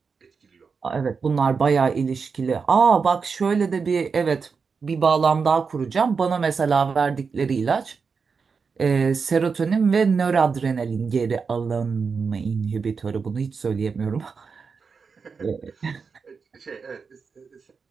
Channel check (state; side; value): quieter; left; 5.3 dB